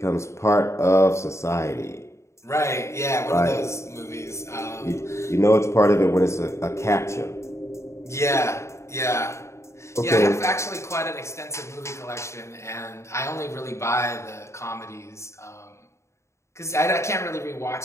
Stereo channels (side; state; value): right; late; 0.14 ms